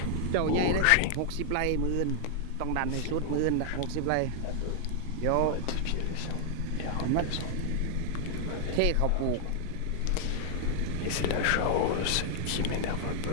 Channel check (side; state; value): both; different; correlation 0.00